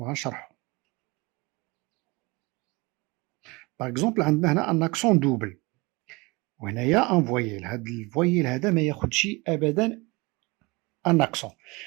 باغ اكزومبل عندنا هنا ان اكسون دوبل وهنايا ان فويل. هاد الفويل هذا ما ياخدش ابدا ان اكسون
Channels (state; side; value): quieter; left; 25.1 dB